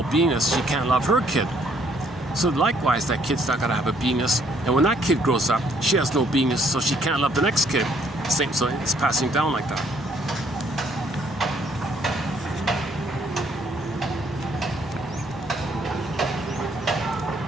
beingness, she can't love her kid. So likewise, that kid's not gonna have a beingness. And when that kid grows up, she has no beingness, so she can't love the next kid. Same, so it's passing down like that.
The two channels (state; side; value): normal; both; correlation 0.66